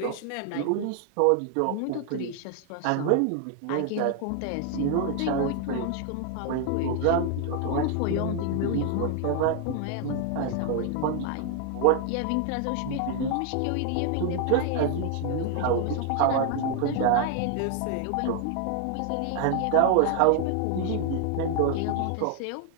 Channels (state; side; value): different; both; correlation 0.00